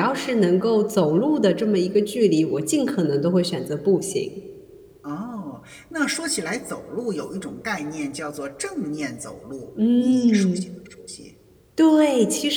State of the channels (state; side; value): identical; both; correlation 1.00